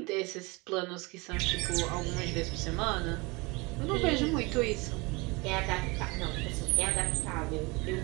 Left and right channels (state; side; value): quieter; left; 25.9 dB